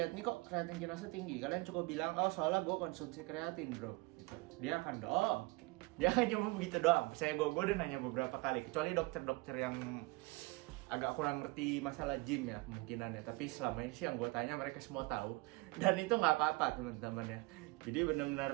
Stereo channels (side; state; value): left; quieter; 24.4 dB